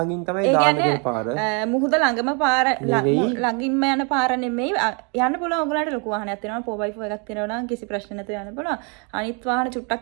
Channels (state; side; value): quieter; left; 34.9 dB